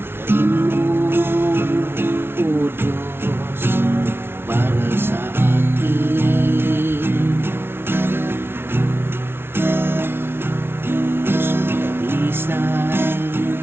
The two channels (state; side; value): late; left; 0.11 ms